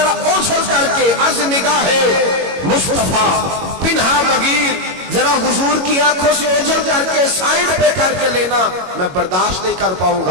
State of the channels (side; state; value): left; late; 22 ms